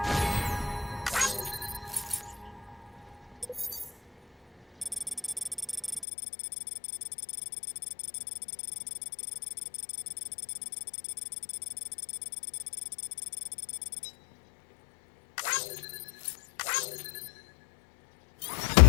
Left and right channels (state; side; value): drops out; right; at 6.1 s